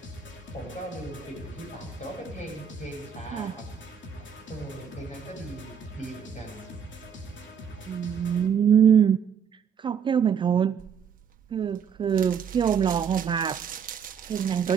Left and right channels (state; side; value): quieter; left; 7.5 dB